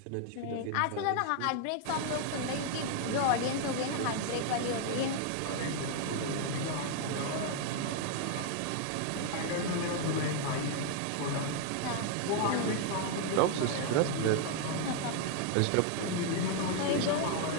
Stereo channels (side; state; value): both; different; correlation 0.00